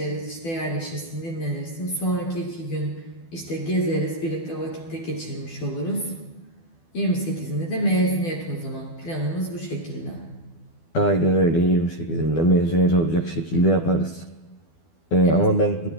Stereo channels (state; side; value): late; right; 12 ms